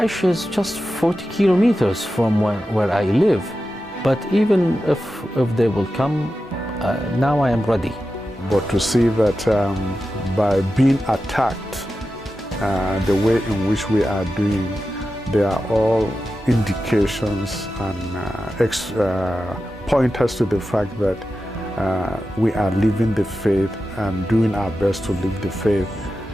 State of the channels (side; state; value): both; normal; correlation 0.92